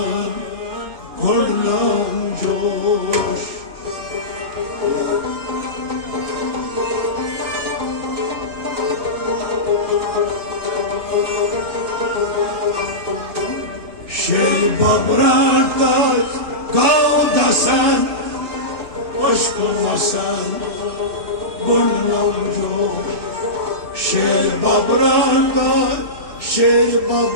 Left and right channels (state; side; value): late; left; 2.6 ms